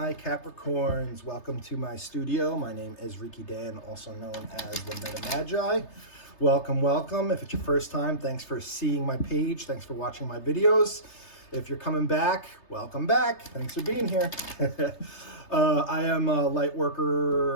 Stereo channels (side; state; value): right; late; 3.3 ms